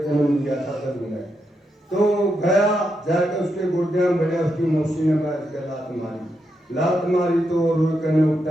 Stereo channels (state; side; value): normal; both; correlation 0.83